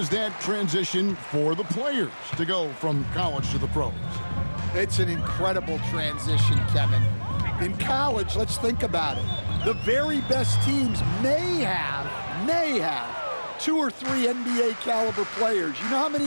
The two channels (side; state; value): both; inverted; correlation -1.00